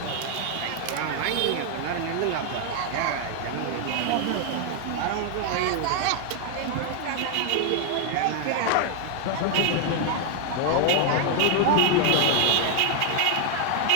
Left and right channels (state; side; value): different; both; correlation 0.00